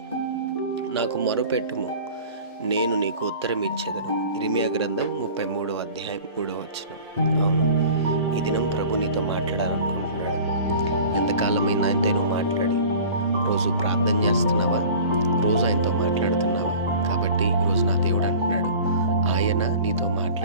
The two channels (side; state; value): both; inverted; correlation -0.42